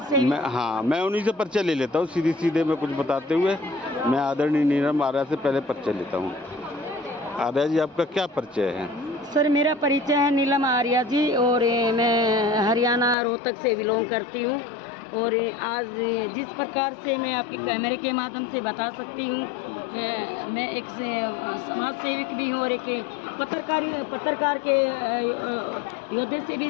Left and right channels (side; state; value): right; drops out; at 13.2 s